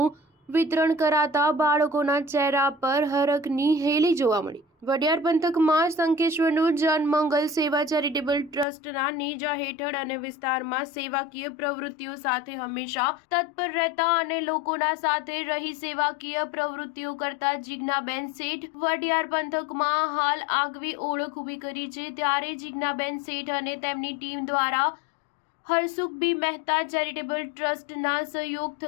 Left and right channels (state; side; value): drops out; right; at 8.7 s